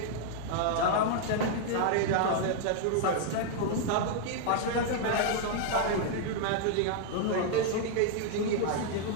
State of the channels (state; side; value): different; both; correlation -0.01